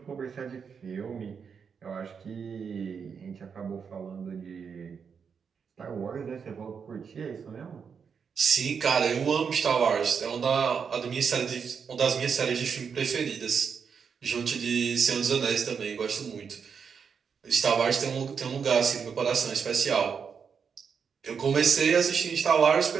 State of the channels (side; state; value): left; quieter; 6.4 dB